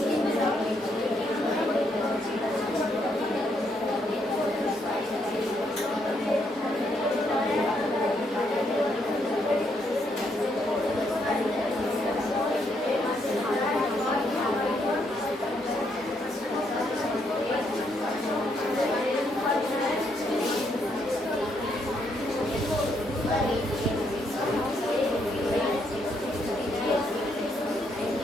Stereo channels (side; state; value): both; normal; correlation 0.75